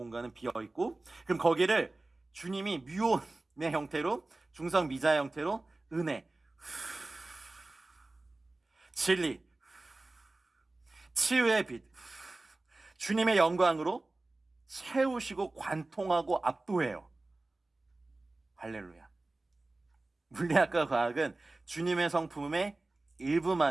비어 있고, 그럼 거기를 주님이 뮤온의 형태로, 중성 미자의 형태로 은혜, 진리, 치유의 빛, 주님의 영광으로 채우시고 관통하고 압도해요. 할렐루야. 물리학과 과학은 주님의 성품의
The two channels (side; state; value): left; quieter; 3.0 dB